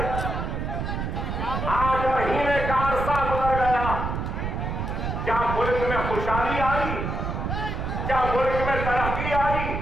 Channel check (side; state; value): right; noise; rumble, 3 dB below the sound